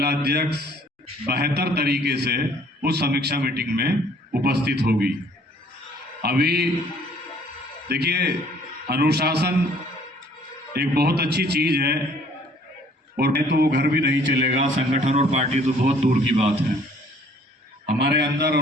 बेहतर तरीके से उस समीक्षा मीटिंग में उपस्थित होगी। अभी देखिए, अनुशासन एक बहुत अच्छी चीज़ है, और नहीं तो वो घर भी नहीं चलेगा, संगठन और पार्टी तो बहुत दूर की बात है। हमारे अंदर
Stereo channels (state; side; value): normal; both; correlation 0.58